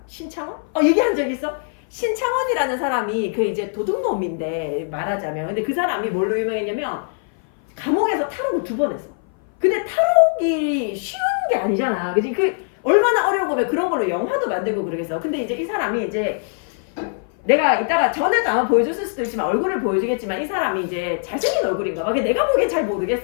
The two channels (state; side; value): silent; right; 58 dB below the other